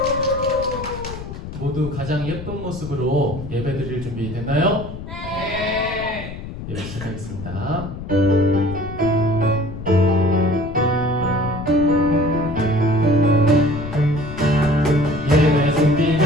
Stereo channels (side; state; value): left; noise; rumble, 10 dB below the sound